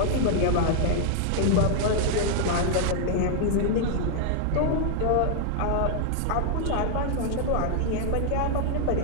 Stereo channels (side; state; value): both; different; correlation 0.00